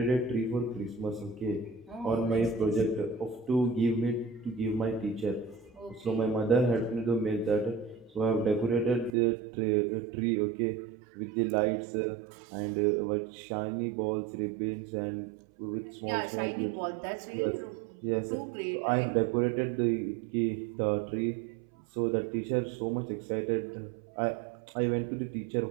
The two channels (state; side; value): drops out; left; at 9.1 s